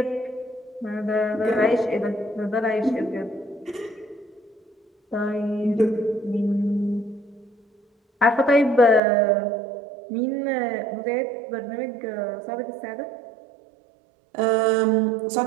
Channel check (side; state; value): left; drops out; at 9.0 s